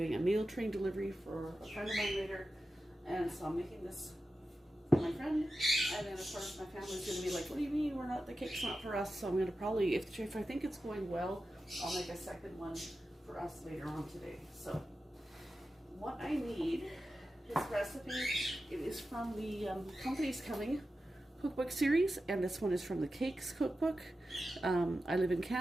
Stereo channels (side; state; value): both; normal; correlation 0.92